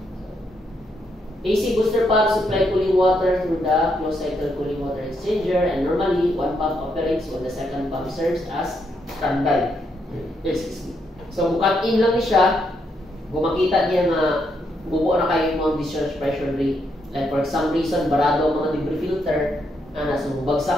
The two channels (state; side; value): normal; both; correlation 0.78